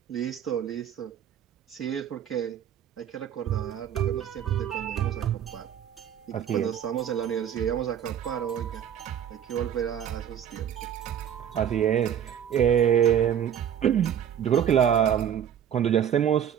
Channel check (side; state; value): left; quieter; 9.3 dB